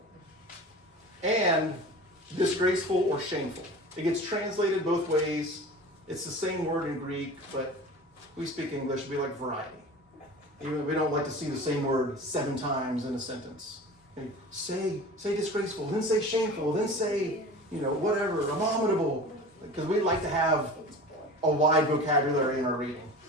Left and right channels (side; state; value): both; normal; correlation 0.36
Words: and disgraceful or shameful. It gets translated both ways. It's the same word in Greek, but we speak English, we like variety. Even we don't like to see the same word 7 times in a sentence. Say disgraceful, then say shameful, then say, whatever, abominable. Because we like to have a wide vocabulary in our reading.